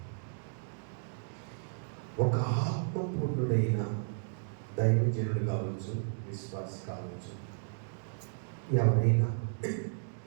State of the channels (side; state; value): left; silent; digital silence